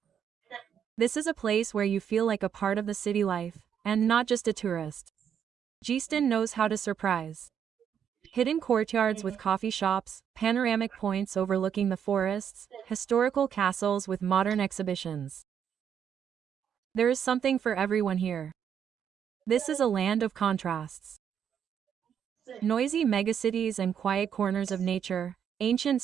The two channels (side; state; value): left; quieter; 8.3 dB